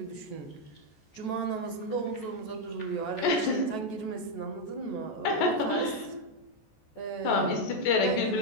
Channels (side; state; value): right; late; 14 ms